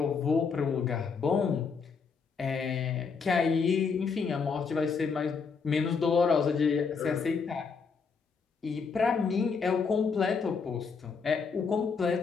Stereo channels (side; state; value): right; quieter; 5.4 dB